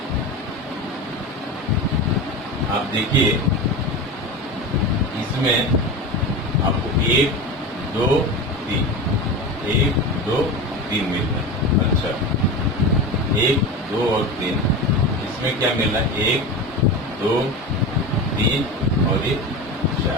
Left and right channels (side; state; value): both; normal; correlation 0.26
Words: आप देखिए इसमें आपको 1, 2, 3, 1, 2, 3 मिल रहा है। अच्छा, 1, 2 और 3, इसमें क्या मिला? 1, 2, 3 और 1,